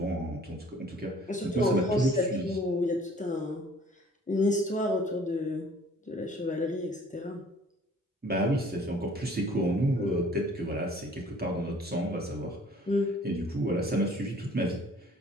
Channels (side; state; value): both; normal; correlation 0.54